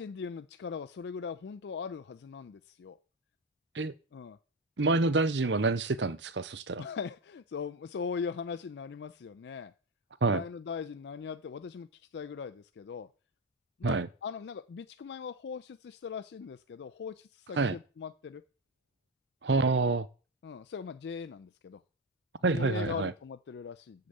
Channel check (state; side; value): normal; both; correlation 0.15